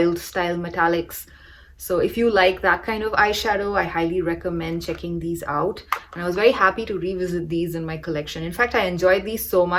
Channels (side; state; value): both; identical; correlation 1.00